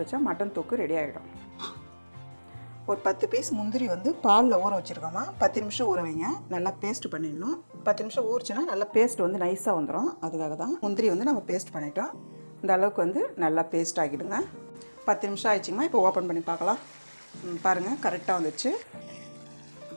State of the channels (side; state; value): both; inverted; correlation -1.00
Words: வச்சா மட்டன் தொக்கு ரெடி ஆகிடும். ஒரு 10 பீஸ் முந்திரி வந்து பாலில் ஊற வச்சுருக்கோம்மா. 10 நிமிஷம் ஊற வைங்க. நல்லா பேஸ்ட் பண்ணிடணும். 10 நிமிஷம் ஊறிச்சுன்னா நல்லா பேஸ்ட் வந்து நைஸாக வந்துடும். அதுக்காக தான் முந்திரி வந்து நம்ம பேஸ்ட் பண்ணிட்டோம். இந்த அளவுக்கு வந்து நல்லா பேஸ்ட் ஆகிடுங்க. 10 நிமிஷம் ஆயிடுச்சுங்கம்மா. இப்போ ஓப்பன் பண்ணி பார்க்கலாம். பாருங்கள், கரெக்டாக வந்துச்சு.